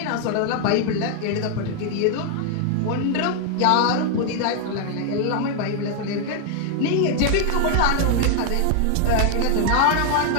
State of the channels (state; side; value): different; both; correlation 0.00